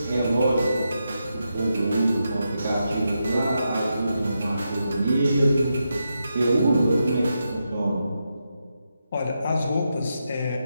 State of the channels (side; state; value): both; inverted; correlation -0.86